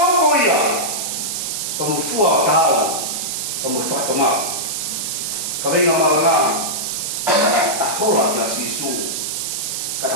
ia, pa mo fua o tāu, pa mo whatomau. Ka venga maranga, a hola ki a sisu, kata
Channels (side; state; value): right; noise; hiss, 3 dB below the sound